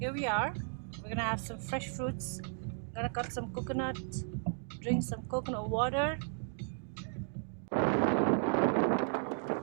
we are. We're gonna have some fresh fruits. Gonna cut some coconut, drink some coconut water. Around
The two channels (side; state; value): left; silent; 55 dB below the other